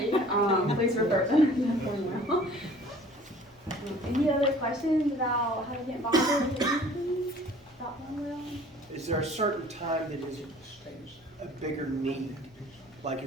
please refer them. Any other questions about how to get involved with anything about Thornwell? Is there a certain time that is a bigger need? Like,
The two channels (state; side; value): normal; both; correlation 0.50